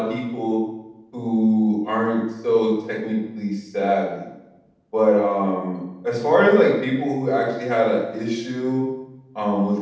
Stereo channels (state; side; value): identical; both; correlation 1.00